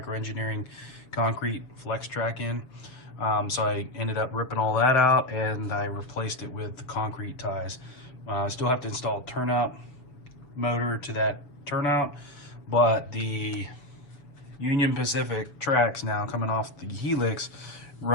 concrete flex track in. So I ended up ripping all that out and I replaced it with the concrete ties. I still have to install a turnout motor to that turnout, but the Union Pacific tracks now coming off the helix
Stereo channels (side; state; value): right; late; 7.0 ms